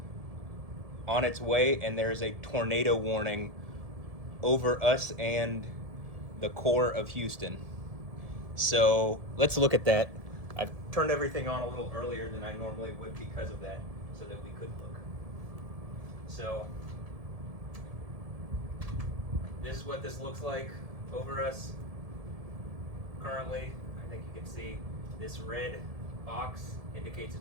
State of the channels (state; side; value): late; left; 1.7 ms